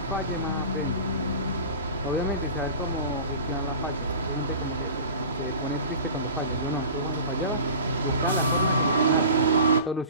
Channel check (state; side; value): inverted; both; correlation -0.38